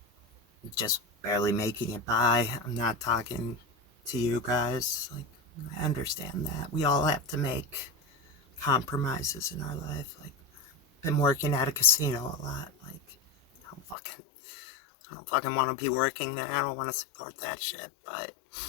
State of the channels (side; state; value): right; drops out; at 14.0 s